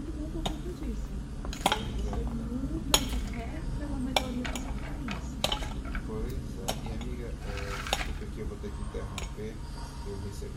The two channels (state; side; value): identical; both; correlation 1.00